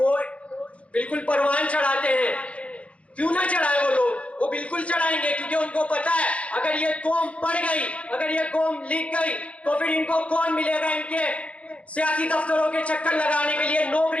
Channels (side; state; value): right; late; 0.063 ms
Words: بالکل پروان چڑھاتے ہیں۔ کیوں نہ چڑھائے وہ لوگ؟ وہ بالکل چڑھائیں گے، کیونکہ ان کو پتا ہے اگر یہ قوم پڑھ گئی، اگر یہ قوم لکھ گئی، تو پھر ان کو کون ملے گا؟ ان کے سیاسی دفتروں کے چکر لگانے کے لیے،